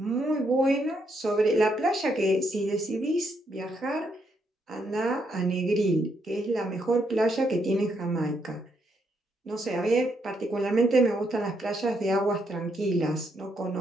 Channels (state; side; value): normal; both; correlation 0.76